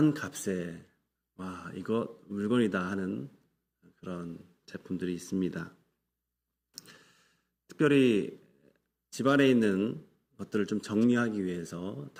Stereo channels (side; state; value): both; identical; correlation 1.00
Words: 값에 와 이거 물건이다 하는 그런 제품들이 있습니다. 특별히 집안에 있는 것들을 좀 정리하기 위해서